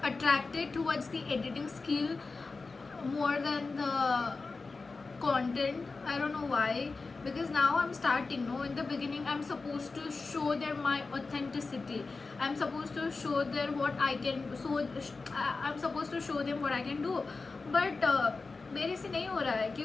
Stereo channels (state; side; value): quieter; right; 4.0 dB